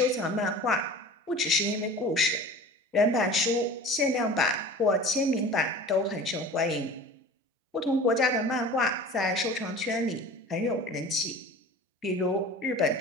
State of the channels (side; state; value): both; normal; correlation 0.40